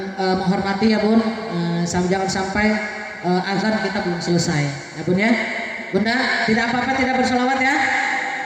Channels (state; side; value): identical; both; correlation 1.00